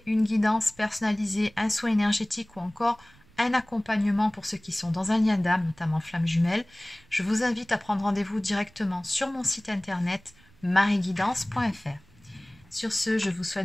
une guidance personnalisée, un soin énergétique ou encore un accompagnement pour ceux qui sont dans un lien d'âme, notamment flamme jumelle, je vous invite à prendre rendez-vous directement sur mon site internet marieguidance.fr. Sur ce, je vous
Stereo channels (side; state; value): right; noise; rumble, 28 dB below the sound